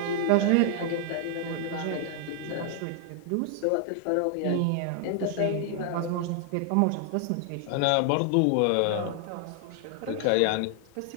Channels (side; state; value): both; different; correlation 0.00